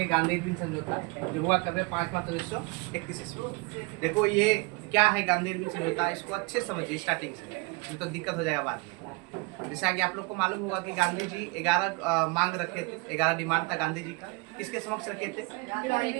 गांधी इरविन समझौता जो हुआ कब 5 मार्च 1931 ईस्वी। देखो ये क्या है गांधी इरविन समझौता, इसको अच्छे से समझिए स्टार्टिंग से, नहीं तो दिक्कत हो जाएगा बाद में। जैसा कि आप लोग को मालूम होगा कि गांधी जी 11 मांग रखे थे, 11 डिमांड था गांधी जी का। किसके समक्ष रखे थे?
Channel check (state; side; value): quieter; left; 27.8 dB